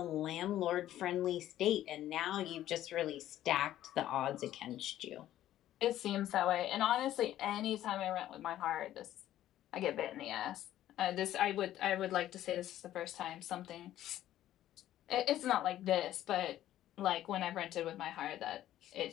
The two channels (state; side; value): quieter; right; 12.9 dB